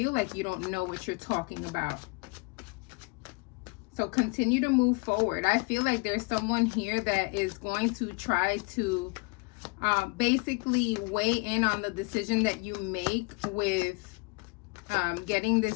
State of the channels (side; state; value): right; quieter; 29.3 dB